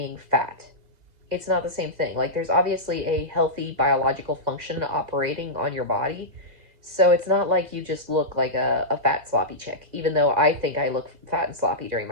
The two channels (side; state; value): left; late; 2.0 ms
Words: fat. it's not the same thing. Like, there's obviously a healthy biological function operating on your body. So it's not like you just look like a fat, sloppy chick, even though I think I look fat and sloppy during